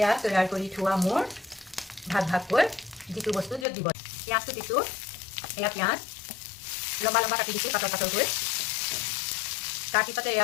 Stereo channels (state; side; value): drops out; right; at 3.7 s